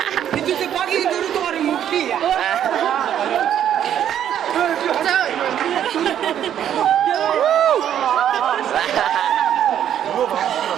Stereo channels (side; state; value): left; quieter; 10.1 dB